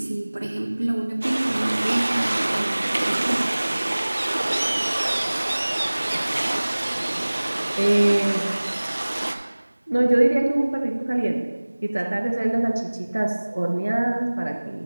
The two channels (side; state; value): both; inverted; correlation -1.00